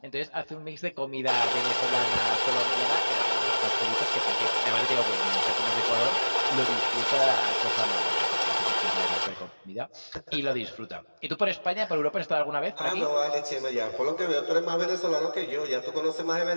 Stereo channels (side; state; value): both; inverted; correlation -1.00